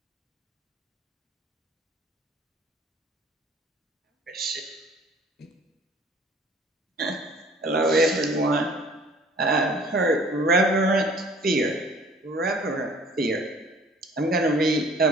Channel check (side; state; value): both; normal; correlation 0.52